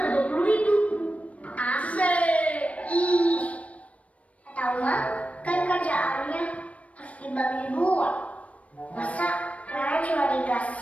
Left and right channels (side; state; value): right; late; 0.065 ms